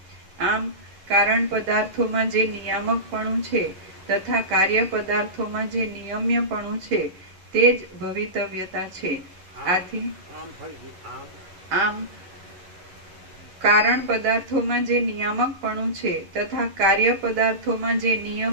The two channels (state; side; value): late; left; 11 ms